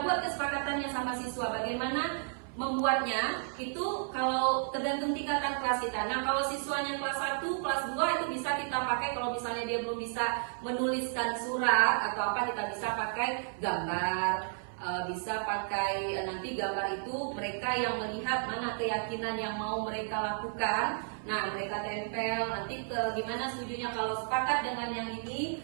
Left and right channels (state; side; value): silent; left; 56 dB below the other